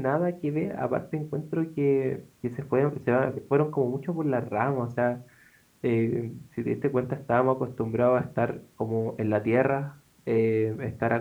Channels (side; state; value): both; identical; correlation 1.00